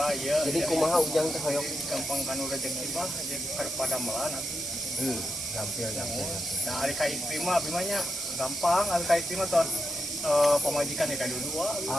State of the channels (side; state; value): right; noise; hiss, 4 dB below the sound